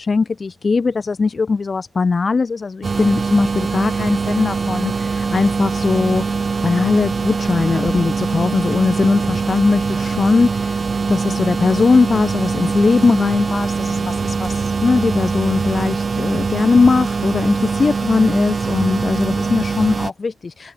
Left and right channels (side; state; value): both; normal; correlation 0.91